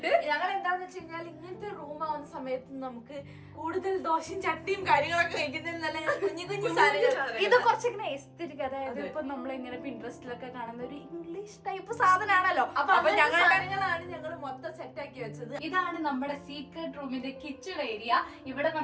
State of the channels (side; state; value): both; identical; correlation 1.00